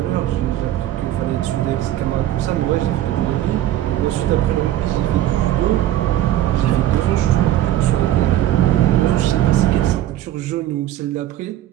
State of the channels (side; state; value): left; quieter; 13.1 dB